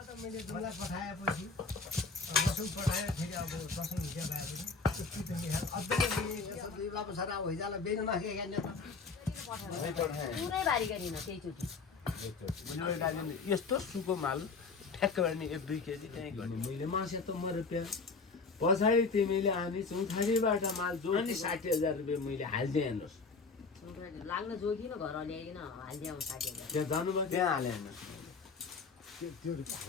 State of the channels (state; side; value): quieter; right; 4.5 dB